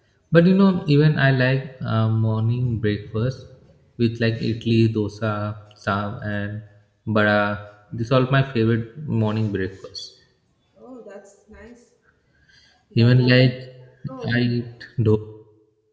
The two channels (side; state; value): both; identical; correlation 1.00